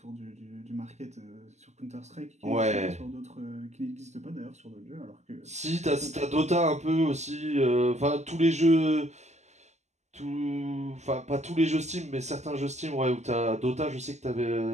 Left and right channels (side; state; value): left; late; 0.33 ms